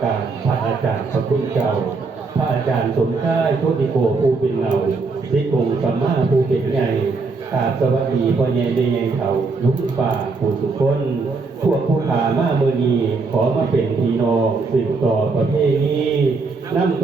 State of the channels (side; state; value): left; quieter; 4.1 dB